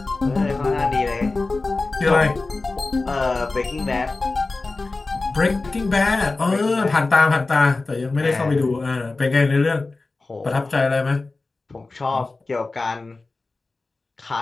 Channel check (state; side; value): quieter; right; 3.5 dB